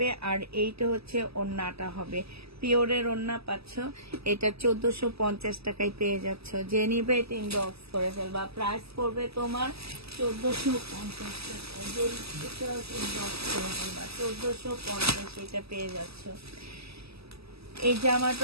আর এইটা হচ্ছে ওড়নাটা হবে। পিওরের ওড়না পাচ্ছ, এটা 1450 টাকায় পেয়ে যাচ্ছ। যে নিবে এটা ইনবক্স করে ফেলবা, প্রাইস পড়বে তোমার 1450 টাকা। যে এটা ইনবক্স করে ফেলবা 1450, এটা পেয়ে যাচ্ছ। এই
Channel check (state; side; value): late; left; 0.78 ms